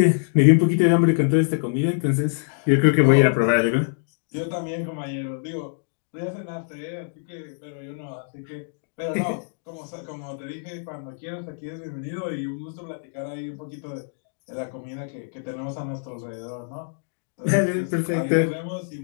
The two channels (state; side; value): silent; right; digital silence